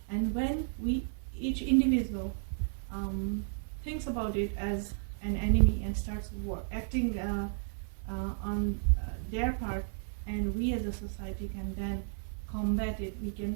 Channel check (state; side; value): silent; left; 56 dB below the other